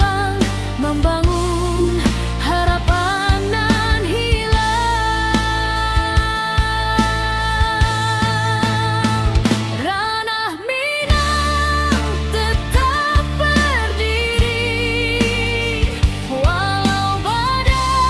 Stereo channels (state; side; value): identical; both; correlation 1.00